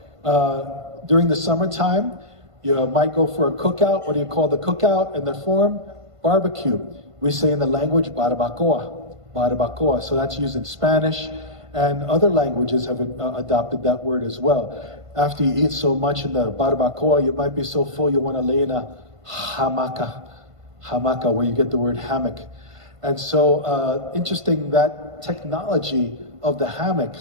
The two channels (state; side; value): late; left; 1.5 ms